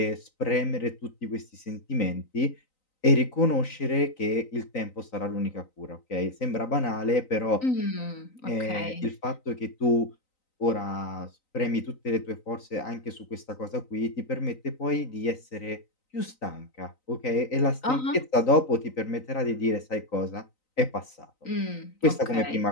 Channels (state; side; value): late; right; 3.9 ms